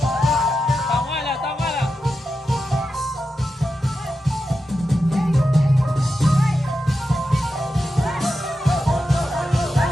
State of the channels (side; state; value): both; normal; correlation 0.89